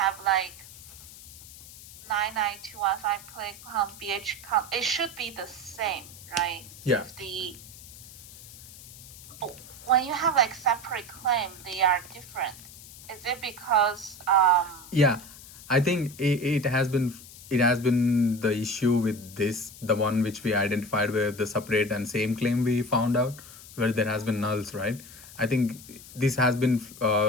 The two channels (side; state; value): left; noise; hiss, 17 dB below the sound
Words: like 99215 claim count, BH count. It should be the same, right? Yeah. When you have like separate claim, they are different. Is it because Yeah, I think it has been the issue with this, the one which we identified where the separate and same claim we found out where there has been nulls, right? I think this has been